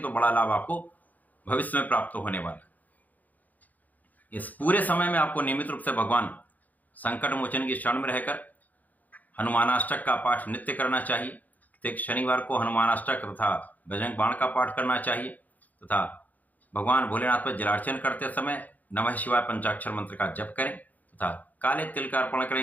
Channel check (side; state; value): right; late; 0.080 ms